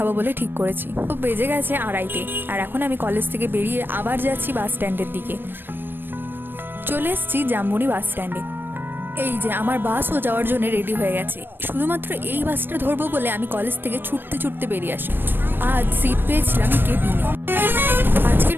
বলে ঠিক করেছি। তো বেজে গেছে 2:30 আর এখন আমি কলেজ থেকে বেরিয়ে আবার যাচ্ছি বাস স্ট্যান্ডের দিকে। চলে এসেছি জাম্বুনি বাস স্ট্যান্ডে। এই যে আমার বাসও যাওয়ার জন্য রেডি হয়ে গেছে। শুধুমাত্র এই বাসটা ধরবো বলে আমি কলেজ থেকে ছুটতে ছুটতে বেরিয়ে আসি। আজ সিট পেয়েছিলাম কেবিনে। আজকের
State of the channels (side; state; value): left; late; 0.096 ms